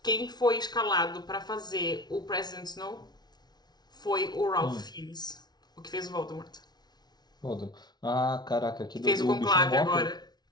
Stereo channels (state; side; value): late; right; 0.19 ms